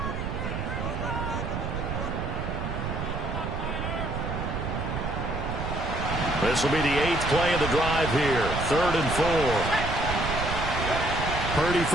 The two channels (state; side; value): noise; right; rumble, 3 dB below the sound